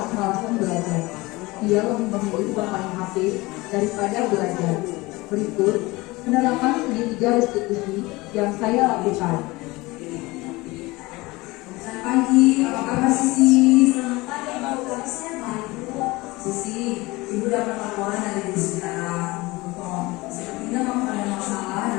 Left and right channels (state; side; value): quieter; right; 21.8 dB